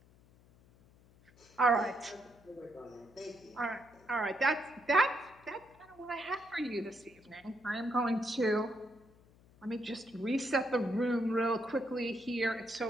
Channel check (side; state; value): left; noise; hum, 27 dB below the sound